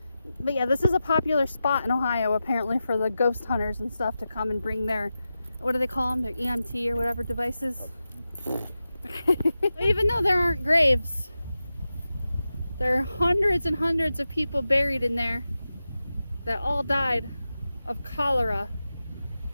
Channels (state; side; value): inverted; both; correlation -0.92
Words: But yeah, this is a popular spot in Ohio, apparently, for the ghost hunters and stuff to come and bring their, what do they call them, their EMT or whatever devices. Even though there aren't graves, there are hundreds and hundreds of people buried in there that all died of cholera,